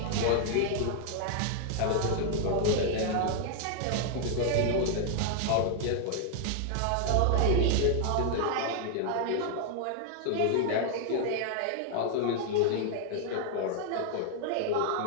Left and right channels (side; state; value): both; different; correlation 0.00